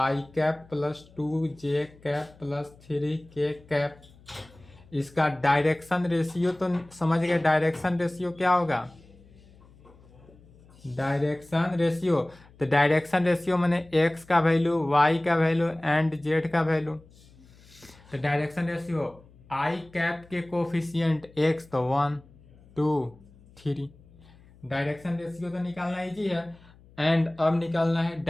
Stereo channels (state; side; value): noise; left; hum, 25 dB below the sound